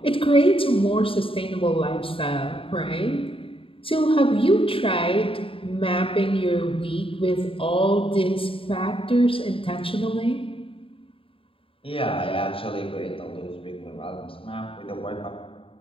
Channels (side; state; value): right; late; 0.26 ms